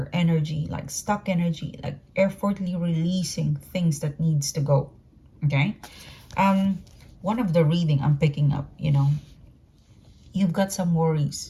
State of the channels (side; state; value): both; identical; correlation 1.00